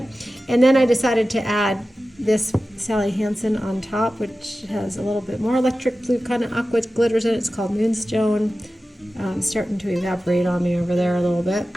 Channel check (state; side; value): normal; both; correlation 0.95